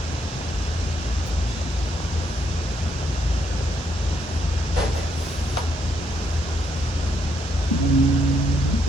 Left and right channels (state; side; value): normal; both; correlation 0.74